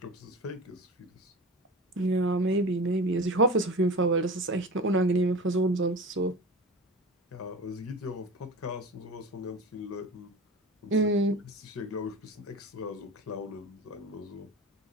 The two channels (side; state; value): both; normal; correlation 0.32